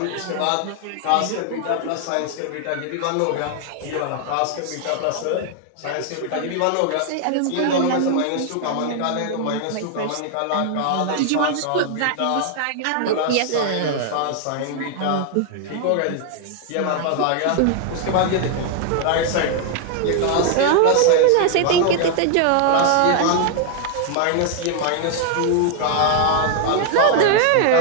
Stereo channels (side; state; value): both; different; correlation 0.00